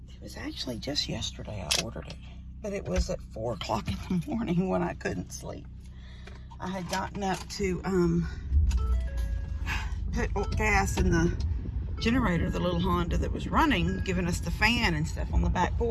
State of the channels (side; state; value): both; identical; correlation 1.00